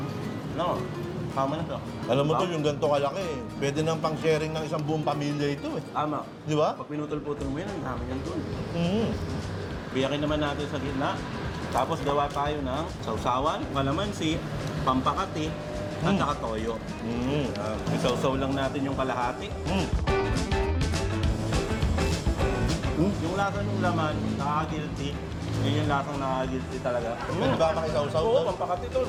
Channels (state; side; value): identical; both; correlation 1.00